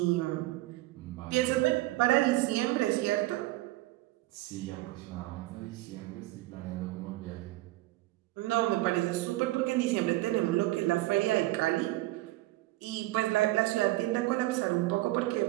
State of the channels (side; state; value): left; quieter; 18.2 dB